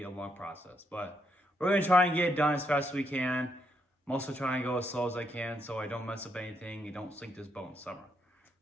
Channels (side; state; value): both; normal; correlation 0.77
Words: a long process. But we're going to try and get it done as fast as we can. I'm also trying to go as slow as I can so I don't mess up anything and don't sink this boat in summer.